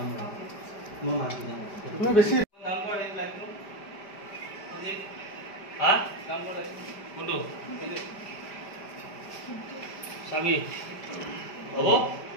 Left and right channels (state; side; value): late; right; 5.0 ms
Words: আৰু মই মাক বুজাম। তুমি বেছি কাম কৰা এই লাইটটো আজি হা কাম কৰা কোনটো এইটো চাবি হ'ব